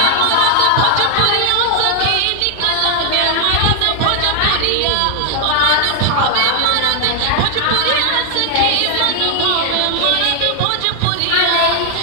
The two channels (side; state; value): both; different; correlation 0.00